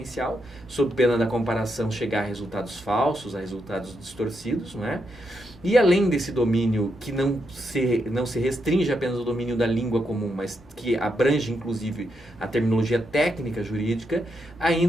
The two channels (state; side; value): normal; both; correlation 0.82